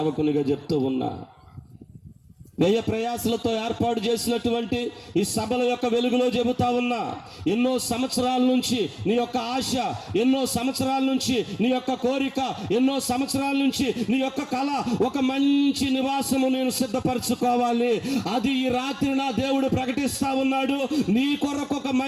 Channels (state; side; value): identical; both; correlation 1.00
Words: చెప్తూ ఉన్నా, వ్యయ ప్రయాసలతో ఏర్పాటు చేసినటువంటి ఈ సభల యొక్క వెలుగులో చెబుతా ఉన్నా, ఎన్నో సంవత్సరాల నుంచి నీ యొక్క ఆశ, ఎన్నో సంవత్సరాల నుంచి నీ యొక్క కోరిక, ఎన్నో సంవత్సరాల నుంచి నీ యొక్క కళ, ఒక మంచి నివాసము నేను సిద్ధపరచుకోవాలి. అది ఈ రాత్రి నా దేవుడు ప్రకటిస్తా ఉన్నాడు. నీ కొరకు ఒక